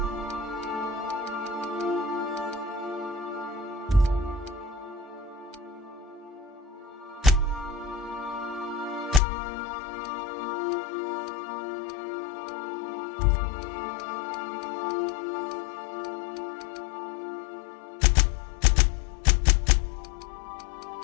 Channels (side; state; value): right; drops out; at 9.2 s